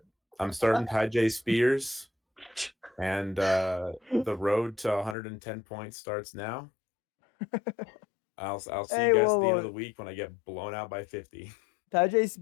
starting Ty J Spears, and the road to 110 points starts now. I'll see Hey, you guys whoa, at the end whoa. of the week when I get blown out by 50. Tajay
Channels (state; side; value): drops out; right; at 5.2 s